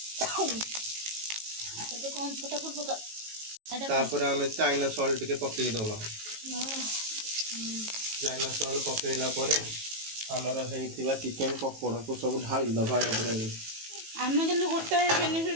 तो कौन छोटा पका तापर हमें चाइना सॉल्ट के पके दबा चाइना सॉल्ट पकेला परे हमर हेइतिबा चिकन पकोड़ा को सब ढाली दबा ऊपर आमे के गोटे बेनिफिट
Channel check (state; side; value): late; left; 18 ms